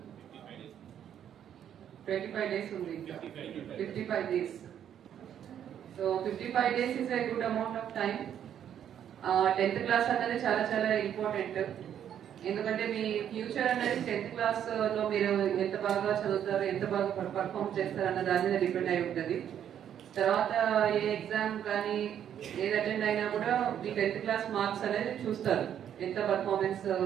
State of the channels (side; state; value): left; quieter; 9.6 dB